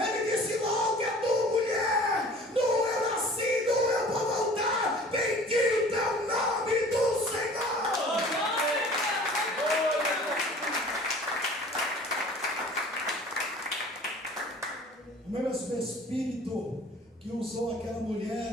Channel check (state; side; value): normal; both; correlation 0.47